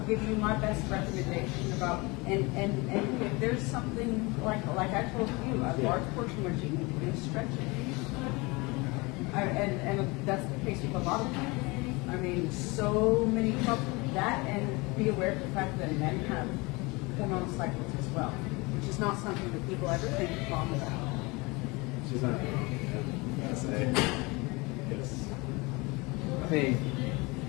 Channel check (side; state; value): right; quieter; 25.5 dB